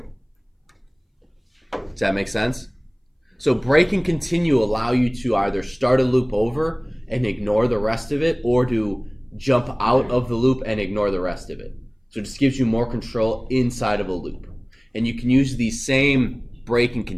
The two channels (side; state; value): both; identical; correlation 1.00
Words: Does that make sense? So break and continue allow you to either start a loop over and ignore the rest of it, or to jump out of the loop and ignore the rest of it. So it just gives you more control inside of a loop. And you can use these same break and